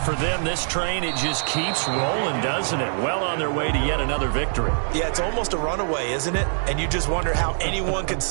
for them, this train, it just keeps rolling, doesn't it? Well on their way to yet another victory. Yeah, it's almost a runaway, isn't it? And you just wonder how anyone could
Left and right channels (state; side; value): silent; left; digital silence